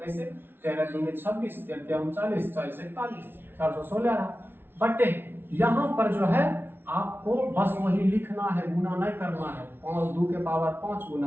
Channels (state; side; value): late; left; 0.11 ms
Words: 13 दूनी 26 13 39 40 41 416 आ रहा। बट यहाँ पर जो है आपको बस वही लिखना है, गुना नहीं करना है। 2 के पावर 5